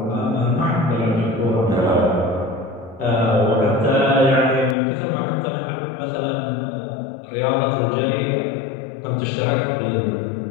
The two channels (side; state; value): right; drops out; at 4.8 s